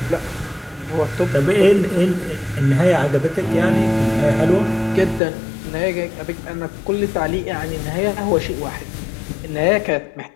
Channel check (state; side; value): drops out; right; at 5.2 s